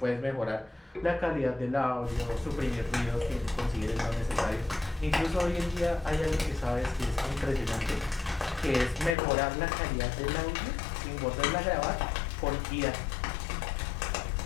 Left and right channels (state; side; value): drops out; right; at 9.2 s